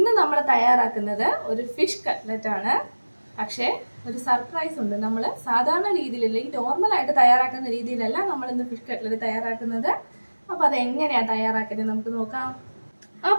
നമ്മൾ തയ്യാറാക്കുന്നത് ഒരു ഫിഷ് കട്ട്ലറ്റ് ആണ്. പക്ഷേ ഒരു സർപ്രൈസ് ഉണ്ട്. നമ്മൾ സാധാരണ രീതിയിലല്ല, ഈ നോർമലായിട്ട് തയ്യാറാക്കുന്ന രീതിയിലല്ല നമ്മൾ ഇന്ന് ഫിഷ് കട്ട്ലറ്റ് തയ്യാറാക്കുന്നത്. അപ്പോൾ അതെങ്ങനെയാണ് തയ്യാറാക്കുന്നത് നമുക്ക് നോക്കാം.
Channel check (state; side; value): inverted; both; correlation -1.00